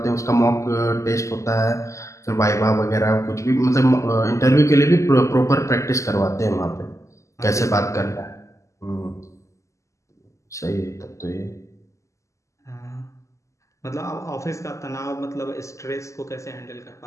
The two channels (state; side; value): late; right; 0.15 ms